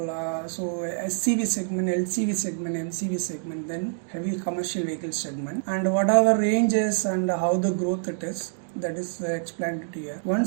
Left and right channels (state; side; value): silent; left; digital silence